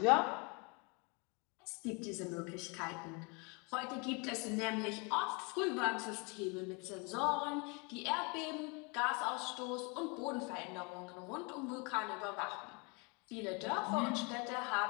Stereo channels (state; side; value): quieter; right; 31.5 dB